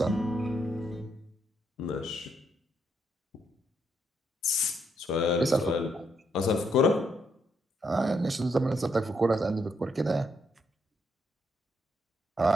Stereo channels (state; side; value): normal; both; correlation 0.77